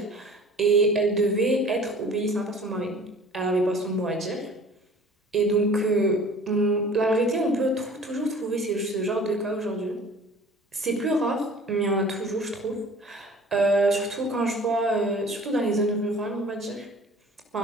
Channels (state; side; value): normal; both; correlation 0.47